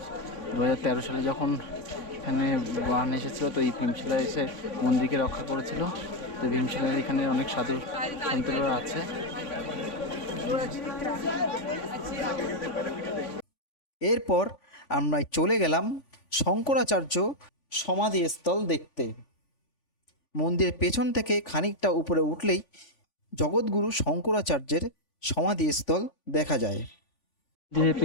2013 সালে যখন এখানে বান এসেছিলো, তো এই ভীমশিলা এসে মন্দিরকে রক্ষা করেছিল। তো ভীমশিলার এখানে অনেক সাধু সন্তরা আছে। এরপর আমরা চলে গেলাম শঙ্করাচার্য সমাধিস্থল দেখতে। মন্দিরের পেছন থেকে খানিকটা উপরে উঠলেই জগৎগুরু শঙ্করাচার্যের সমাধিস্থল দেখা যায়।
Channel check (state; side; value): late; right; 3.5 ms